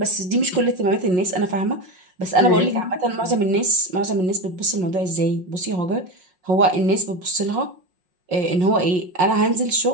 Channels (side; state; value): left; late; 5.5 ms